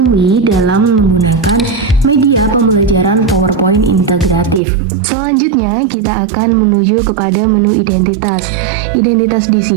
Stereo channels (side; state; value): left; drops out; at 4.6 s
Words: dalam menggunakan media pembelajaran PowerPoint integratif. Selanjutnya, kita akan menuju kepada menu identitas. Identitas di